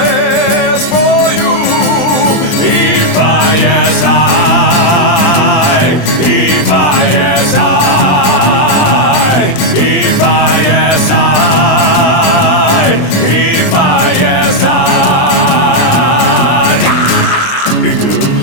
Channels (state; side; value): late; right; 23 ms